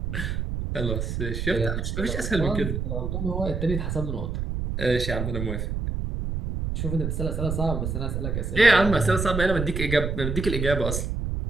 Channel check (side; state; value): right; noise; rumble, 2 dB below the sound